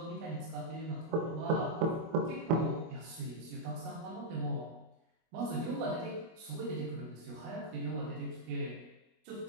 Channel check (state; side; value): late; left; 25 ms